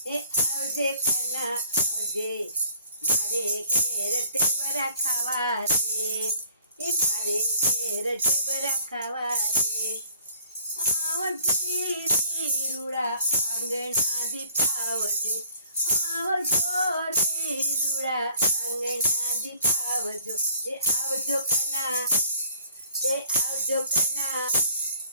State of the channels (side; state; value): both; inverted; correlation -0.58